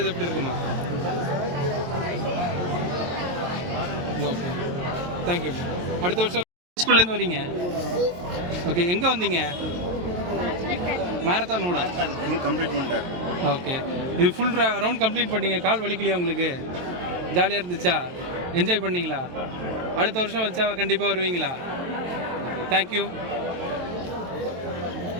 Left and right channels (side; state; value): left; late; 23 ms